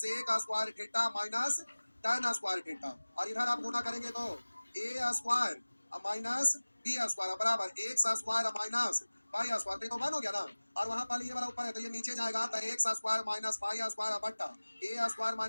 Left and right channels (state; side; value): inverted; both; correlation -1.00